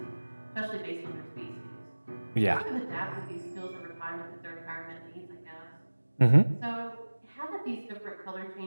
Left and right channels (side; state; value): both; inverted; correlation -1.00